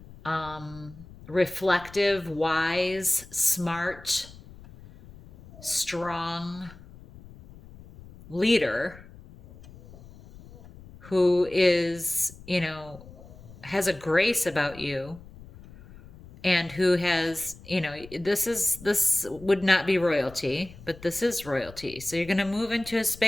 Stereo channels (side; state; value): left; noise; rumble, 19 dB below the sound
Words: reflective, wise, smart, strong, leader who is, has a grace about you, and who has, this would not be royalty, but this is royalty. So you're going to move into a